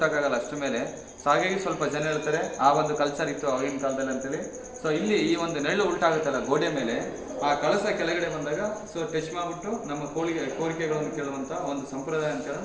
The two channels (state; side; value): identical; both; correlation 1.00